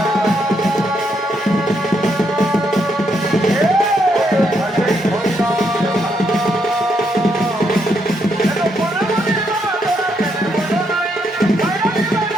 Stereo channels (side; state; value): both; normal; correlation 0.77